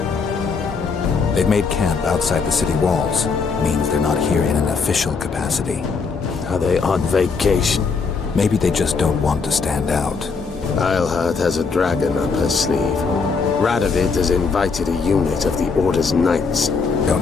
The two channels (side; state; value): right; quieter; 5.0 dB